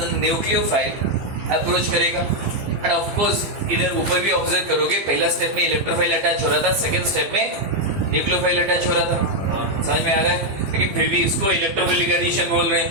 न्यूक्लियोफाइल अप्रोच करेगा। एंड ऑफ कोर्स इधर ऊपर भी ऑब्जर्व करोगे, पहला स्टेप में इलेक्ट्रोफाइल अटैच हो रहा था, सेकंड स्टेप में न्यूक्लियोफाइल अटैच हो रहा था। समझ में आ रहा है? लेकिन फिर भी इसको इलेक्ट्रोफिलिक एडिशन बोल रहे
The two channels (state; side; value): late; left; 15 ms